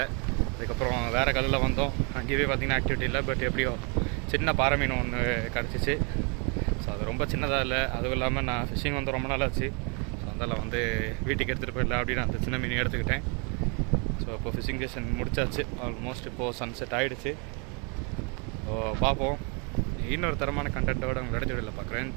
அதுக்கப்புறம் வேறு கல்லில் வந்தோம். அங்கேயே பார்த்திங்கன்னா ஆக்டிவிட்டி இல்லை. பட் எப்படியோ சின்ன பாறை மீன் ஒன்று கிடச்சிச்சு. ஸோ அது ரொம்ப சின்னதாக இல்லை. அதுவும் இல்லாமல் நான் ஃபிஷிங் வந்து ரொம்ப நாள் ஆச்சு. ஸோ அதெல்லாம் வந்து வீட்டுக்கு எடுத்துகிட்டு போயிடல அப்படின்னு அந்த சின்ன மீன் எடுத்துக்கிட்டேன். ஸோ இப்போ ஃபிஷிங் செஷன் முடிச்சாச்சு. ஆல்மோஸ்ட் இப்போது சன்செட் ஆகிடுச்சு. ஸோ பார்ப்போம். இன்னொரு தரமான கண்டென்ட்டோடு உங்களோட வீடியோவில் பார்க்குறேன்.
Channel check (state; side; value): quieter; left; 34.9 dB